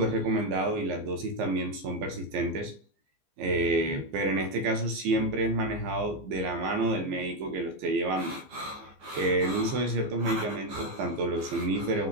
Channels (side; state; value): left; late; 15 ms